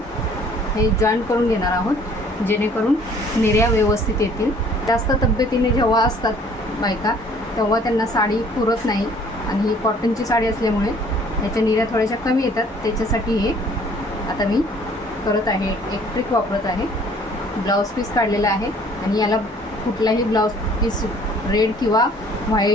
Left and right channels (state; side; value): normal; both; correlation 0.56